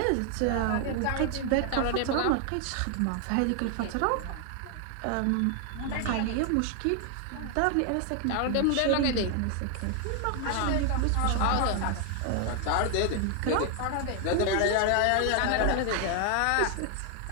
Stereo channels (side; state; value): both; different; correlation 0.00